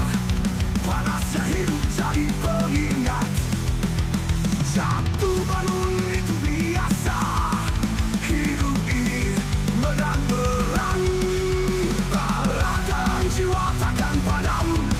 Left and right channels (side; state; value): both; identical; correlation 1.00